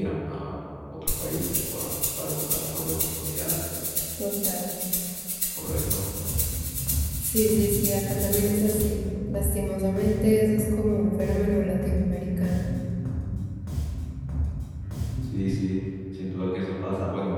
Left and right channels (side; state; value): both; identical; correlation 1.00